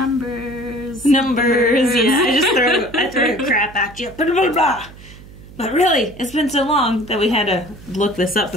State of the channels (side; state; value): right; noise; hum, 19 dB below the sound